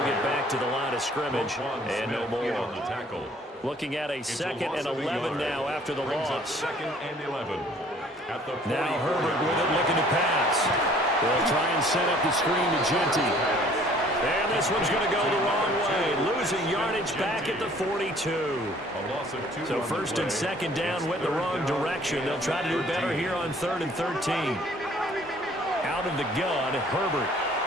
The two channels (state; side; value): normal; both; correlation 0.56